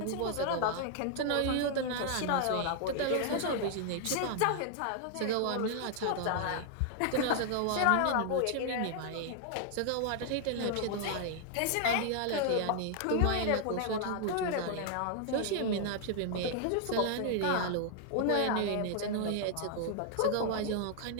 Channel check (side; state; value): both; different; correlation 0.00